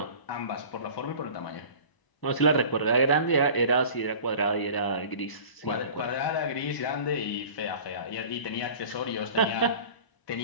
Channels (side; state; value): right; late; 1.0 ms